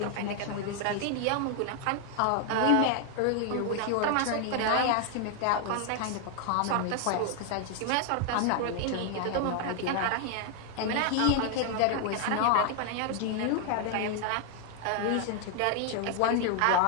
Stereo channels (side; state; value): both; different; correlation 0.00